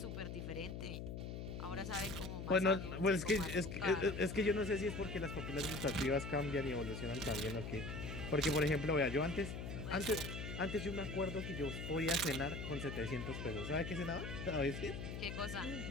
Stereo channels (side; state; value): left; noise; hum, 6 dB below the sound